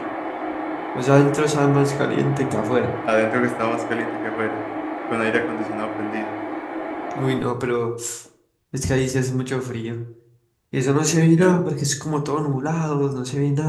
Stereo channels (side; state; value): both; identical; correlation 1.00